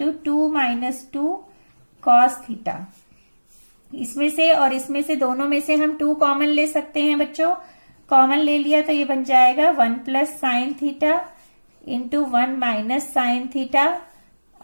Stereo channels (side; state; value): both; inverted; correlation -1.00